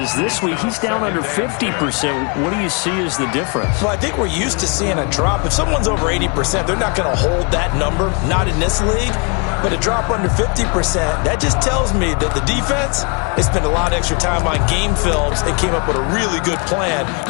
This week he's down under 50%. What do you see as the difference? Well, I think we're used to seeing a drop. If someone's over 80%, they're not going to hold that number, not in this league. But a drop under 50%, that just tells me that the defense has spent a lot of extra time on game films and came up with a really good plan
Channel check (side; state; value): right; quieter; 33.8 dB